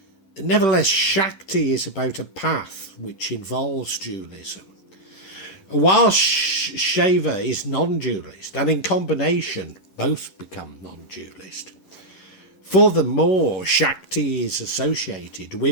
Nevertheless, Shakti is about a path which involves dualism. While Shiva is non-dualist, and in combination both become non-dualist. Furthermore, Shakti is associated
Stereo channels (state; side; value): late; right; 11 ms